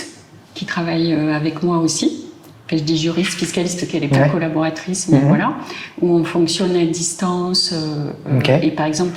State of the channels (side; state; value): both; identical; correlation 1.00